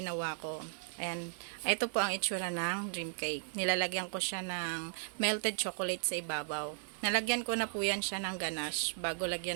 ko. Ayan, ito po ang itsura ng dream cake. Nilalagyan ko siya ng melted chocolate sa ibabaw. Nalagyan ko na po yan siya ng ganache bago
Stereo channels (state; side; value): silent; left; digital silence